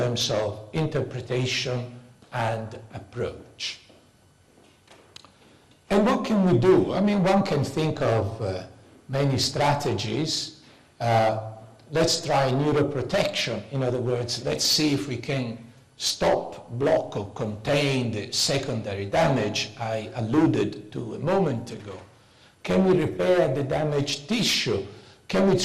of interpretation and approach. And what can we do? I mean, one can think of many strategies. Let's try neuroprotection. In other words, let's see if we can stop, block, or contain the secondary damage I alluded to a moment ago. Can we repair the damaged tissue? Can we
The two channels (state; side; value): identical; both; correlation 1.00